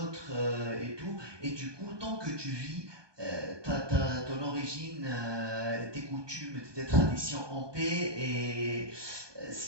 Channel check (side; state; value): left; late; 1.2 ms